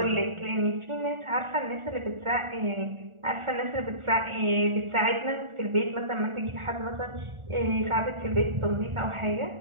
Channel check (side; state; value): left; late; 1.4 ms